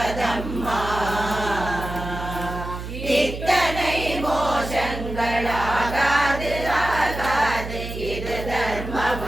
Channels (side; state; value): right; noise; hum, 8 dB below the sound